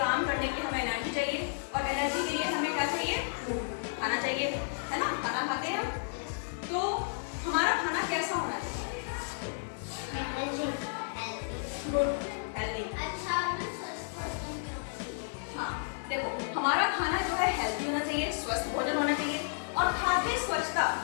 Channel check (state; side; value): silent; right; digital silence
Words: करने के लिए हमें एनर्जी चाहिए, और एनर्जी के लिए हमें क्या चाहिए? खाना चाहिए, है ना। खाना खाते हैं हम, तो हमारा खाना कैसा होना चाहिए? Good, healthy. हाँ देखो, हमारा खाना जो है हेल्दी होना चाहिए, स्वस्थ भोजन होना चाहिए, और खाद्य स्वच्छता